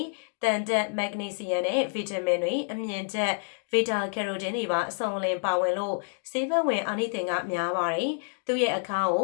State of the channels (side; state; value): right; silent; digital silence